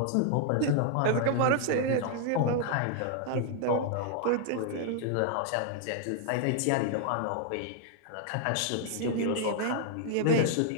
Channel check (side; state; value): both; different; correlation 0.00